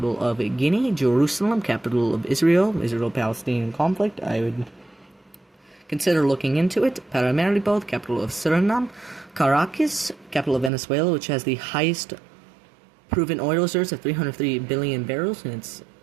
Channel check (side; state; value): left; drops out; at 10.7 s